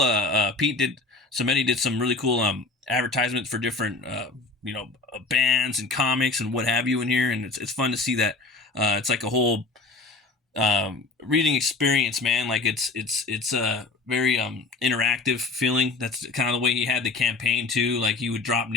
Samedi did some really cool advertisements for different bands and comics and what have you in here, and it's fun to see that. It's like a whole reading experience, man. Like it's a very interactive feeling. That's kind of the way he had the campaign too. Like he would drop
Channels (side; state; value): right; quieter; 3.8 dB